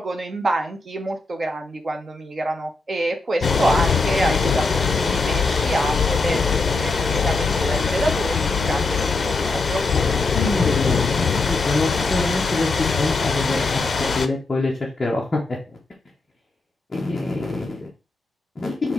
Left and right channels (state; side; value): quieter; right; 3.2 dB